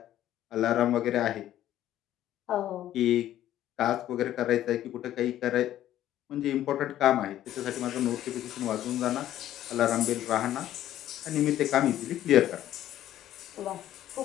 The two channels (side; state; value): right; quieter; 12.6 dB